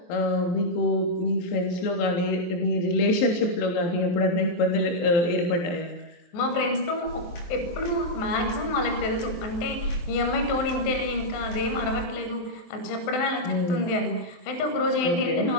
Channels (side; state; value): right; late; 23 ms